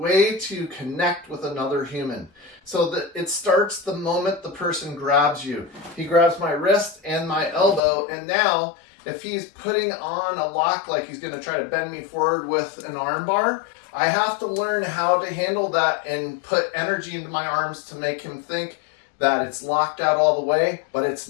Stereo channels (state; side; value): drops out; right; at 7.8 s